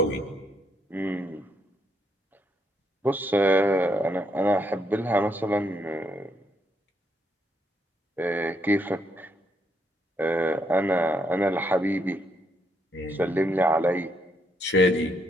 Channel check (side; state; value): both; normal; correlation 0.75